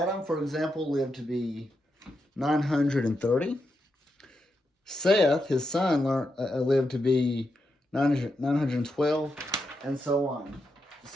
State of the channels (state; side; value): normal; both; correlation 0.85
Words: for example, lived to be 930. Seth, his son, lived to be 912, and so on.